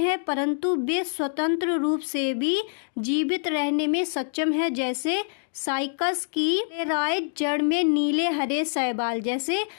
परंतु वे स्वतंत्र रूप से भी जीवित रहने में सक्षम है। जैसे साइकस की कोरेलाइट जड़ में नीले हरे शैवाल, जैसे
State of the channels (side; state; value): right; silent; digital silence